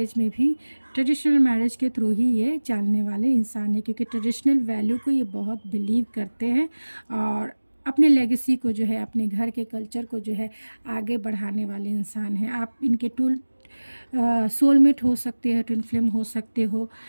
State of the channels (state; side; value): inverted; both; correlation -1.00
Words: मैरिज के थ्रू ही ये चलने वाले इंसान है, क्योंकि ट्रेडिशनल वैल्यू को ये बहुत बिलीव करते हैं, और अपने लेगेसी को जो है, अपने घर के कल्चर को जो है आगे बढ़ाने वाले इंसान हैं। आप इनके सोलमेट हो सकते हैं, ट्विन फ्लेम हो सकते हो।